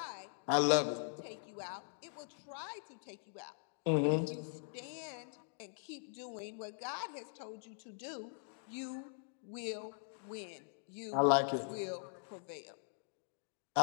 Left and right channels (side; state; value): right; silent; digital silence